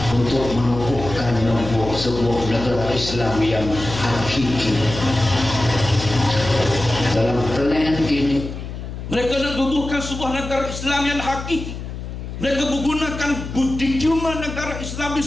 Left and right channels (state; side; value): noise; left; hum, 8 dB below the sound